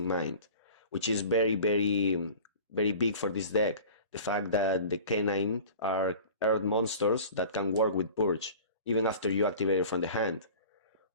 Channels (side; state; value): both; inverted; correlation -0.41